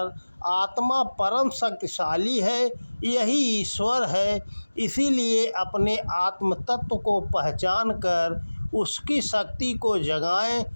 आत्मा परम शक्तिशाली है, यही ईश्वर है। इसीलिए अपने आत्म तत्व को पहचान कर उसकी शक्ति को जगाएं,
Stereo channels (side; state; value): both; inverted; correlation -1.00